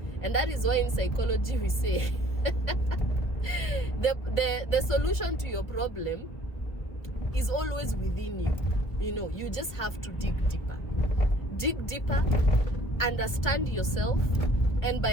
And that is why in psychology we say the solution to your problem is always within you. You just have to dig deeper, understand yourself. And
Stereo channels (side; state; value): right; late; 1.7 ms